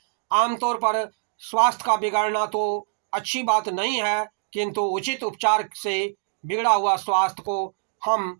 आमतौर पर स्वास्थ्य का बिगड़ना तो अच्छी बात नहीं है, किंतु उचित उपचार से बिगड़ा हुआ स्वास्थ्य को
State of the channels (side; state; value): left; silent; digital silence